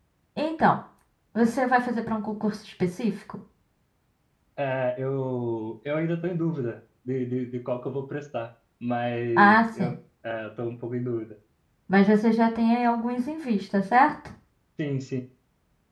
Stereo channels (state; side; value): identical; both; correlation 1.00